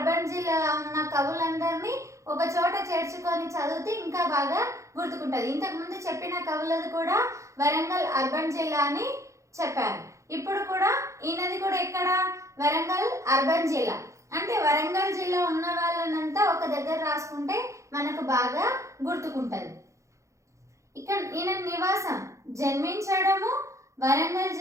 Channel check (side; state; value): left; late; 0.15 ms